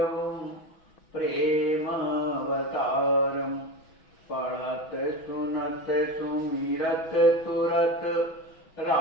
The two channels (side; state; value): right; late; 6.2 ms